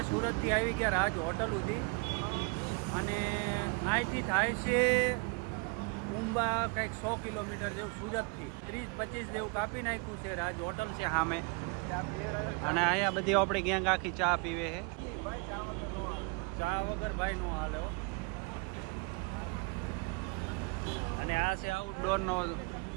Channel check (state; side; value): quieter; left; 31.5 dB